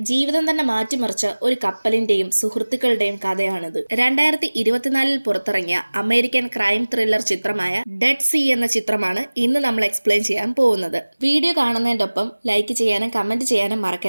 ജീവിതം തന്നെ മാറ്റിമറിച്ച ഒരു കപ്പലിന്റെയും സുഹൃത്തുക്കളുടെയും കഥയാണിത്. 2024 പുറത്തിറങ്ങിയ അമേരിക്കൻ ക്രൈം ത്രില്ലർ ചിത്രമായ ഡെഡ് സീ എന്ന ചിത്രമാണ് ഇന്ന് നമ്മൾ എക്സ്പ്ലെയിൻ ചെയ്യാൻ പോകുന്നത്. വീഡിയോ കാണുന്നതിന്റെ ഒപ്പം ലൈക്ക് ചെയ്യാനും കമന്റ് ചെയ്യാനും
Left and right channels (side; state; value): both; inverted; correlation -1.00